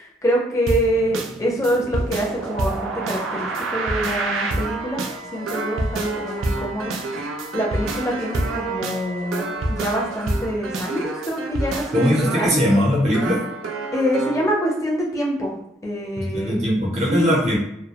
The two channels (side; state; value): both; normal; correlation 0.68